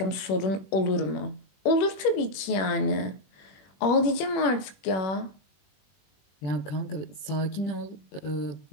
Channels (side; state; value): right; late; 21 ms